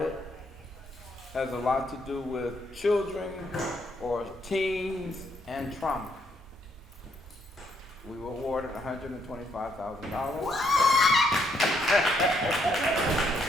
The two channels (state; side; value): normal; both; correlation 0.73